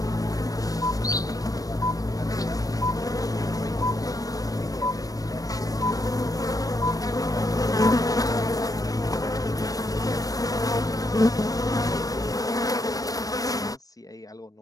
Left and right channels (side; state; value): right; late; 0.18 ms